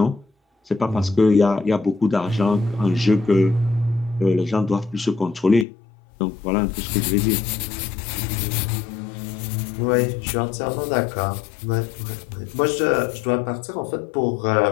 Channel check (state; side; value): drops out; right; at 5.7 s